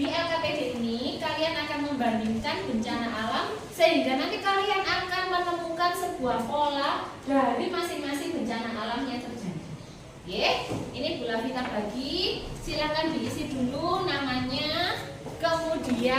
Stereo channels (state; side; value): identical; both; correlation 1.00